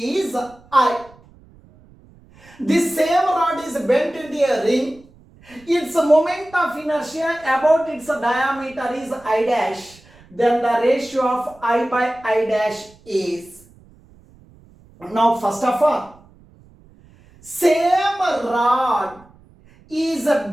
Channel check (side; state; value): right; noise; rumble, 26 dB below the sound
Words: I. This same rod is bent into a ring. Its moment of inertia about its diameter is I dash. Then the ratio of I by I dash is. Now first of all, same rod is